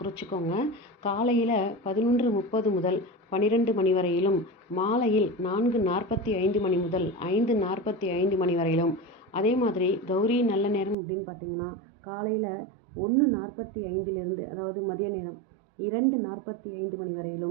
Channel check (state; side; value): drops out; left; at 11.0 s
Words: காலையில் 11:30 முதல் 12 மணி வரையிலும், மாலையில் 4:45 மணி முதல் 5:45 மணி வரையிலும். அதே மாதிரி கௌரி நல்ல நேரம் அப்படின்னு பார்த்திங்கன்னா காலையில் 1:45 அதாவது மதிய நேரம் 2:45 மணி